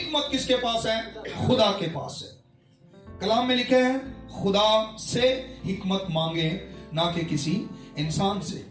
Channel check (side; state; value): both; identical; correlation 1.00